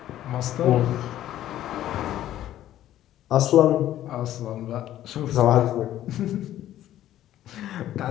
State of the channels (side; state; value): right; quieter; 12.8 dB